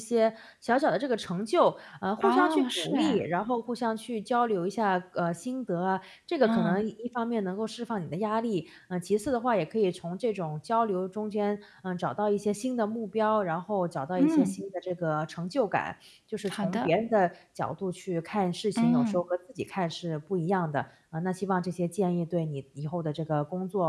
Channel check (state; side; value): identical; both; correlation 1.00